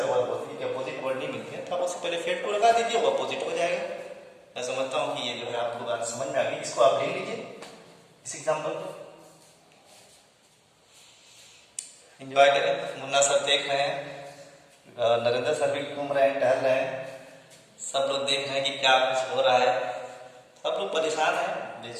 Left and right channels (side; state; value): both; identical; correlation 1.00